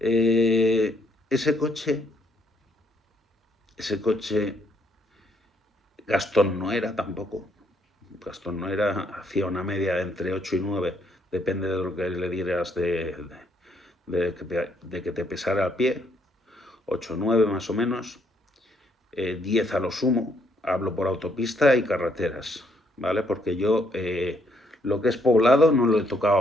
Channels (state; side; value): normal; both; correlation 0.71